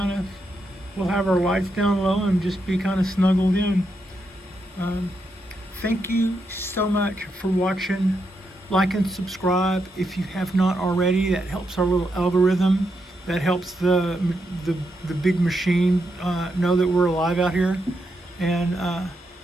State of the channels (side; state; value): both; normal; correlation 0.82